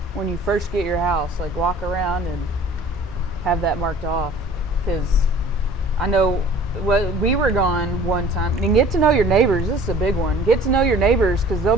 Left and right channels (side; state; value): both; normal; correlation 0.48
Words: when you first get your house. Like walk around and have that marked off, because I know. Well, we were gone one time, and get to know your neighbors. This is a big one. Get to know your neighbors, because they'll